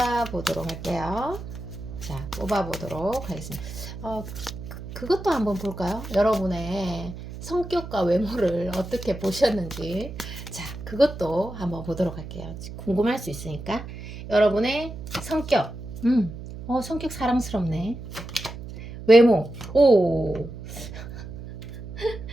보도록 할게요. 자, 뽑아 보도록 하겠습니다. 그것도 한번 볼까요? 여러분의 성격과 외모를 어떻게 보셨는지. 자, 그것도 한번 보도록 할게요. 궁금할 수 있으니까. 여러분의 성격. 성격 사랑스럽네. 외모. 오.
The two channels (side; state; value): right; noise; hum, 11 dB below the sound